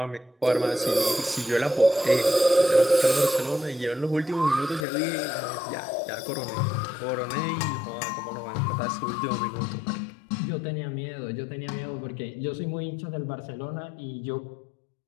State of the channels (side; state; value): right; drops out; at 4.9 s